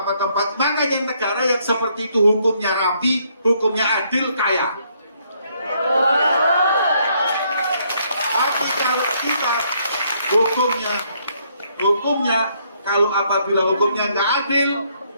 Makanya negara yang seperti itu hukumnya rapi, hukumnya adil, kaya. Tapi kalau kita hukumnya kalau apabila hukumnya nggak adil,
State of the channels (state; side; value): inverted; both; correlation -0.70